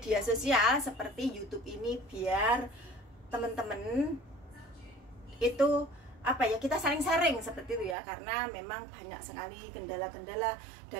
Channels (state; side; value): drops out; left; at 8.0 s